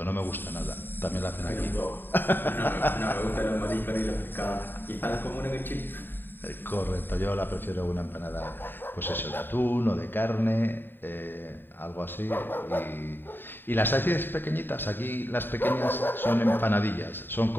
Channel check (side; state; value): right; late; 0.095 ms